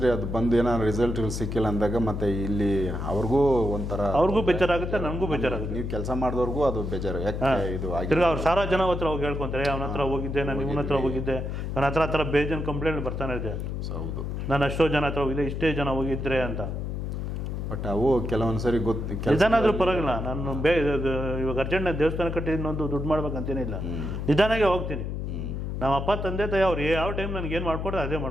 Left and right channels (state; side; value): noise; left; hum, 4 dB below the sound